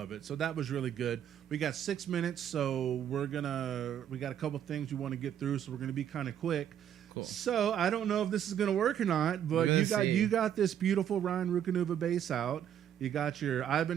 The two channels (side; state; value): left; quieter; 9.8 dB